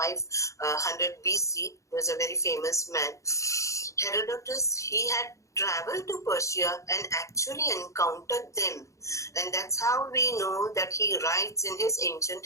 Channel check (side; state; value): right; late; 0.15 ms